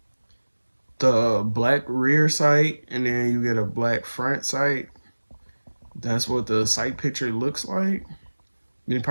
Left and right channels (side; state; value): both; inverted; correlation -1.00